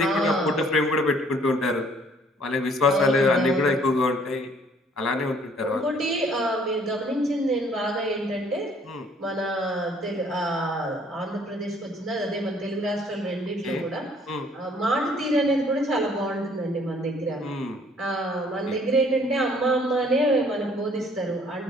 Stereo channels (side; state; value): both; normal; correlation 0.60